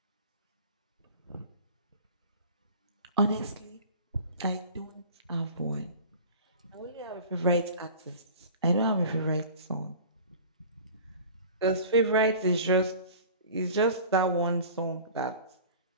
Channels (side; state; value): both; inverted; correlation -0.41